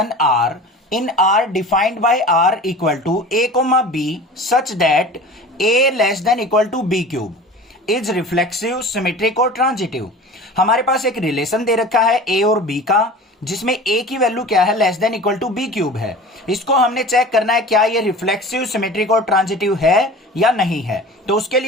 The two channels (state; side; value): normal; both; correlation 0.38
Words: R in R defined by R equal to A comma B such that A less than equal to B cube is reflexive, symmetric और transitive. हमारे पास एक relation दे रखा है ए और बी का, जिसमें ए की वैल्यू क्या है, less than equal to B cube है। इसको हमने चेक करना है क्या ये रिफ्लेक्सिव, सिमेट्रिक और ट्रांजिटिव है या नहीं है। तो उसके